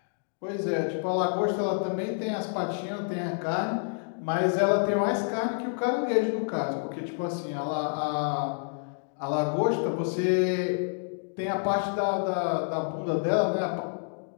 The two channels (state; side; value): silent; right; digital silence